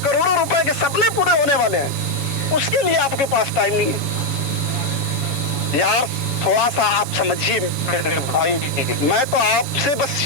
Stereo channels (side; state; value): right; late; 7.2 ms